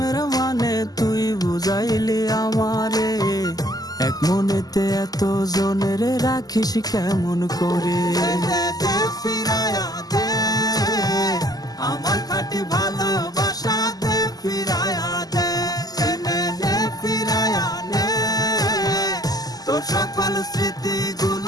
মানে, তুই বুঝাইলি আমারে। এক মনেতে এত জনের রাখিস কেমন করে? দে ফিরায়া দে আমার খাঁটি ভালোবাসা, দে ফিরায়া দে, নে ফিরায়া নে তোর সকল স্মৃতি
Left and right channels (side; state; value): right; late; 0.18 ms